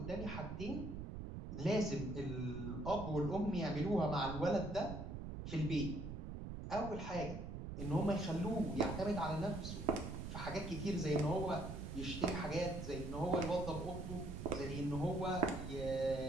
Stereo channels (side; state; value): right; noise; rumble, 6 dB below the sound